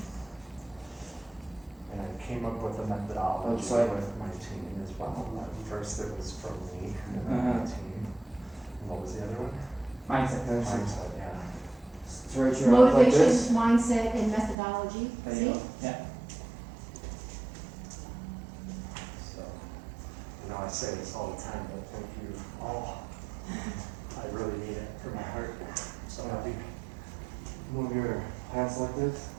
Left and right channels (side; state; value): left; drops out; at 14.6 s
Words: And I came up with a methodology Outside. with my team as well. First it was from me, and then Uh-huh. my team. And what was the other one? Mindset. Mindset, yeah. So right here, like Motivation, this. mindset, and methodology. There See? you go. Yeah. So, I say this all the time, but thank you all. I really need it for my heart. I'm so happy. Move your hands like this.